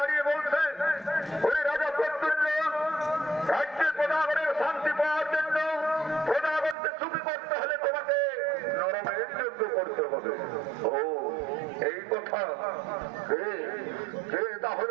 বলছে ওই রাজা প্রত্যুল্য রাজ্যের প্রজাগণের শান্তি পাওয়ার জন্য প্রজাগণকে সুখী করতে হলে তোমাকে নরমেধ যজ্ঞ করতে হবে। ও এই কথা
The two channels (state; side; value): drops out; left; at 6.8 s